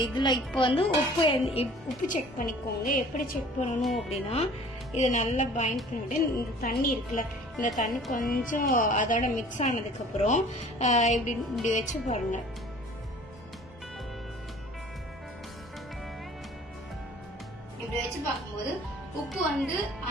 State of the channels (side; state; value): both; normal; correlation 0.49